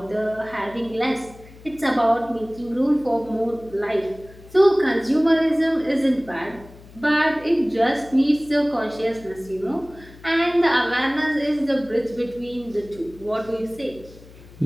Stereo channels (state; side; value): noise; left; hum, 21 dB below the sound